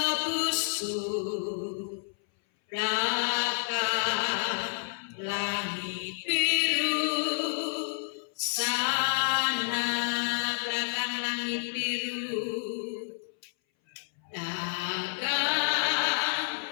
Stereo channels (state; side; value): silent; right; 58 dB below the other